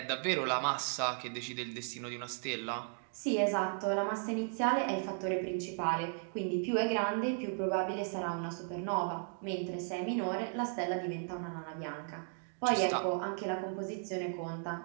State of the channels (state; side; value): silent; left; 54 dB below the other